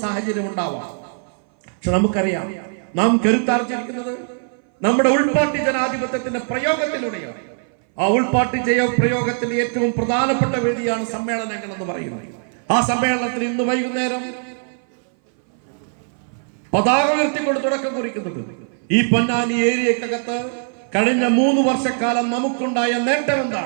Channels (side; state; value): left; silent; 60 dB below the other